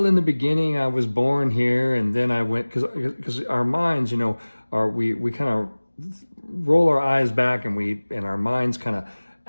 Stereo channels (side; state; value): both; inverted; correlation -1.00